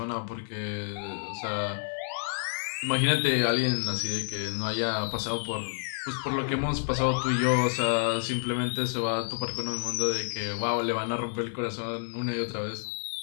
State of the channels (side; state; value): right; silent; 58 dB below the other